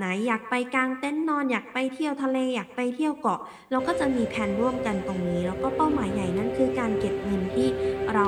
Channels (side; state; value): both; identical; correlation 1.00